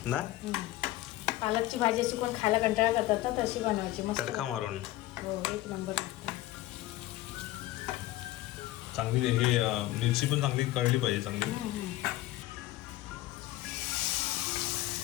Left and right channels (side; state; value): right; quieter; 16.4 dB